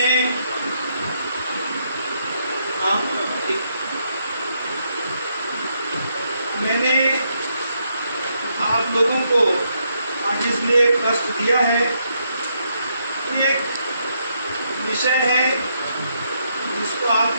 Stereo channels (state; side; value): inverted; both; correlation -0.77